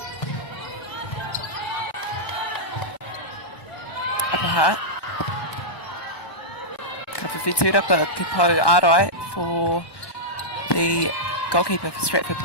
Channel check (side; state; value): right; late; 1.1 ms